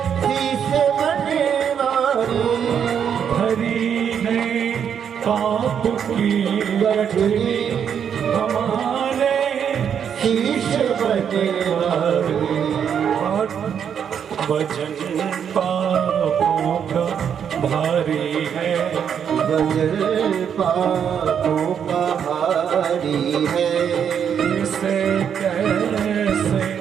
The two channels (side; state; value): left; quieter; 8.0 dB